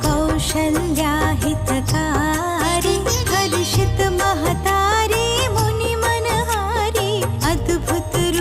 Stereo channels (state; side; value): identical; both; correlation 1.00